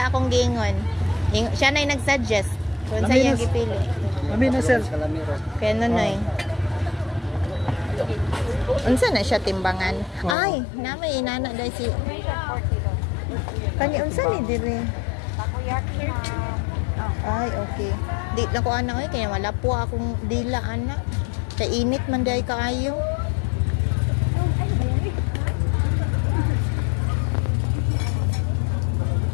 akong gingon. Siya nay nag-suggest kung sa iyang gipili. Amin na sir. Kaya Nonoy. Unsa na siya timbangan? Ay, namay inana dai si Kani unsa ni diri? Ay, okay. Di na ko ana kaya wala po akong dila ana. Kay init man day kaayo.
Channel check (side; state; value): right; drops out; at 10.4 s